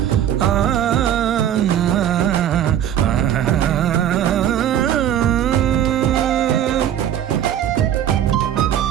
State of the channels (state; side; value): quieter; left; 10.5 dB